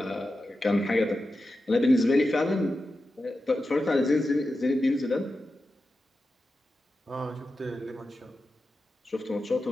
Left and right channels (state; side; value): normal; both; correlation 0.91